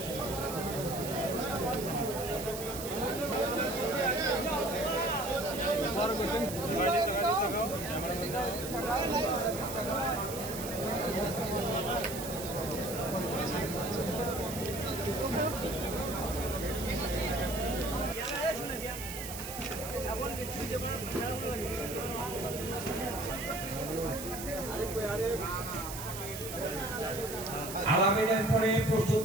আলামিনের পরে প্রস্তুত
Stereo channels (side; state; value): right; noise; hiss, 9 dB below the sound